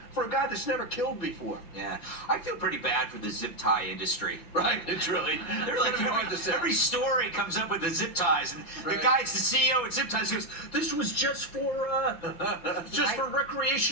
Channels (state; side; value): late; right; 6.0 ms